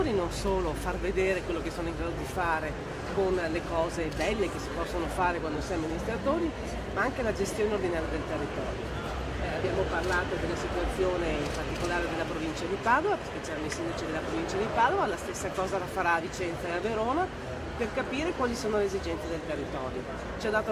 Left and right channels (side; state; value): both; identical; correlation 1.00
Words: non solo far vedere quello che sono in grado di fare con le cose belle che si possono fare quando si è amministratori, ma anche la gestione ordinaria del territorio. Abbiamo parlato della situazione in particolare della provincia di Padova, perché c'erano i sindaci della provincia di Padova, la stessa cosa la farà a Vicenza e a Verona, per capire quali sono le esigenze del territorio. Ci ha dato